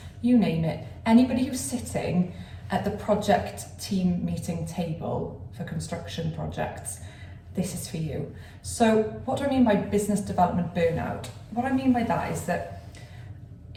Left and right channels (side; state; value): both; identical; correlation 1.00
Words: you name it. Anybody who's sitting at the project team meeting table for construction projects, this is for you. So what do I mean by business development burnout? What I mean by that is that